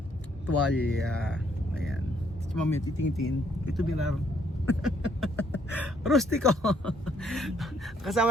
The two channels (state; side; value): normal; both; correlation 0.69